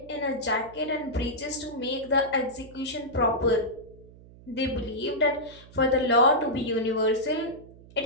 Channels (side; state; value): right; noise; hum, 21 dB below the sound